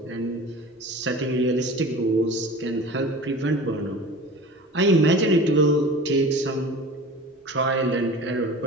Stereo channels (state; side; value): normal; both; correlation 0.38